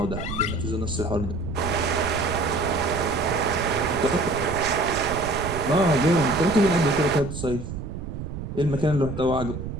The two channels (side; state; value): right; noise; rumble, 7 dB below the sound